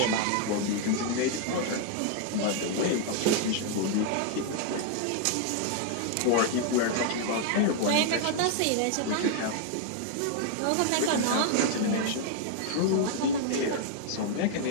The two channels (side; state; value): both; different; correlation 0.00